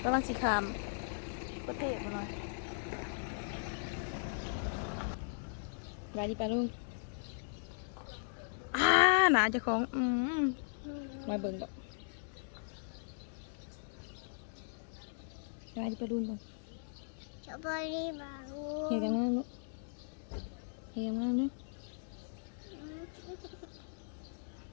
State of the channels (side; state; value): right; silent; digital silence